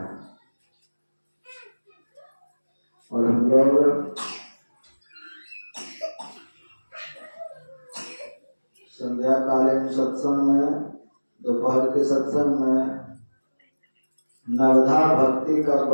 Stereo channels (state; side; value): inverted; both; correlation -1.00